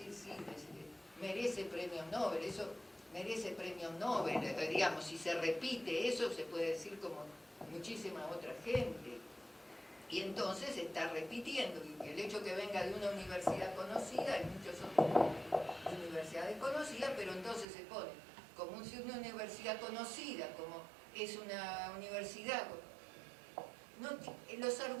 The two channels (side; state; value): left; drops out; at 17.7 s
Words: sí, merece premios Nobel, eso merece premios Nobel, digamos, si se repite eso, se puede decir como muchísima otra gente. Y entonces se está repitiendo, y el hecho que venga de una universidad conocida, hay muchas otras universidades conocidas, pero entonces se pone como si una universidad conocida, como es una universidad... No, los